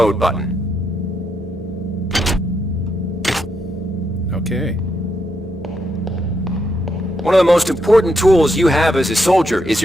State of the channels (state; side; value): normal; both; correlation 0.79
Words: button. Okay. One of the most important tools you have as a soldier is